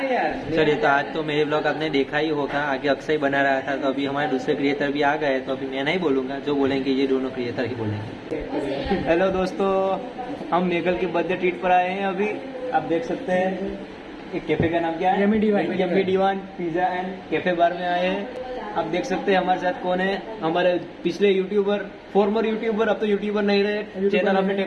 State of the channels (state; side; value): identical; both; correlation 1.00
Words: चलिए, तो आज तो मेरे ब्लॉग आपने देखा ही होगा। आगे अक्षय बना रहा था, तो अभी हमारे दूसरे क्रिएटर भी आ गए। तो अभी मैं नहीं बोलूंगा, जो बोलेंगे ये दोनों क्रिएटर ही बोलेंगे। हेलो दोस्तों, हम मेघल के बर्थडे ट्रीट पर आए हैं। अभी आप देख सकते हैं एक कैफे का नाम क्या है? Yummy divine pizza and cafe bar में आए हैं। आप देख सकते हैं हमारे साथ कौन है। हमारे पिछले यूट्यूबर, फॉर्मर यूट्यूबर, अब तो यूट्यूबर नहीं रहे, चैनल हमने